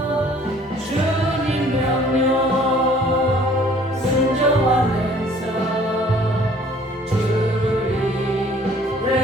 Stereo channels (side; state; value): both; normal; correlation 0.55